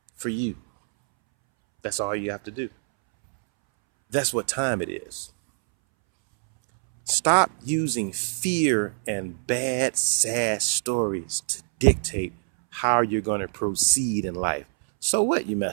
for you. That's all you have to do. That's what time it is. Stop using fear and bad, sad stories to dictate how you're going to proceed in life. So what, you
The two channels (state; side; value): silent; left; 62 dB below the other